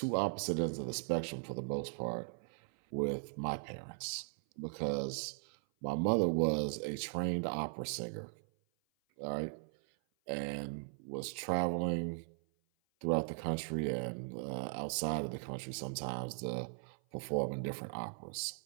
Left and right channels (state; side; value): silent; left; 52 dB below the other